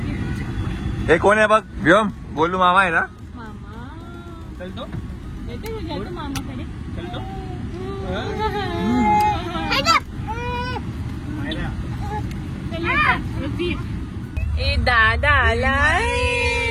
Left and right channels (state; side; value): identical; both; correlation 1.00